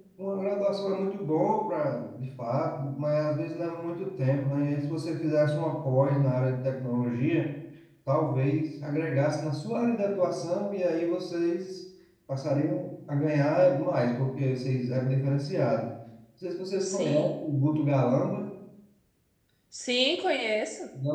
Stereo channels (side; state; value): both; identical; correlation 1.00